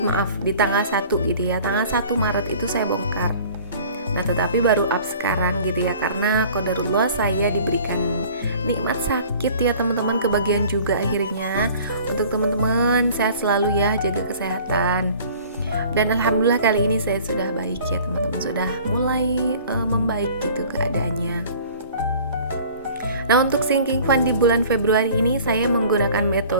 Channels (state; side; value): inverted; both; correlation -0.48